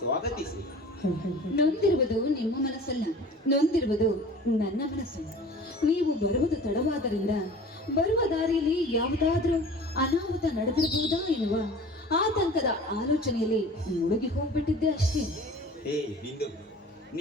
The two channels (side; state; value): both; normal; correlation 0.43